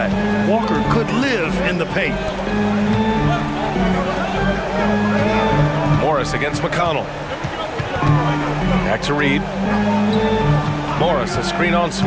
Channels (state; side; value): identical; both; correlation 1.00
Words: Walker could live in the paint. Morris against McConnell. Back to Reed. Morris, a screen on